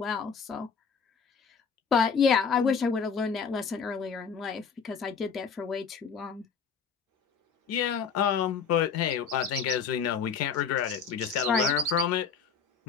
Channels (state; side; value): quieter; right; 6.2 dB